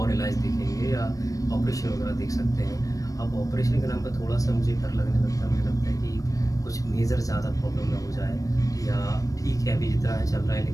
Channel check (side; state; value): right; late; 0.16 ms